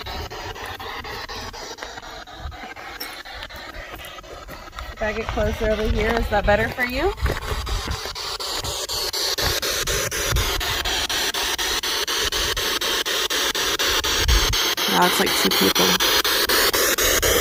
If I get closer over here, is that better for you? Now it's like two people.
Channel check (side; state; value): both; identical; correlation 1.00